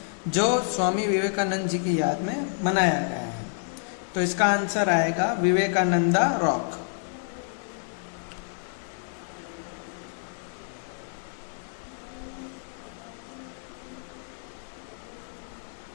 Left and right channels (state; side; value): silent; right; digital silence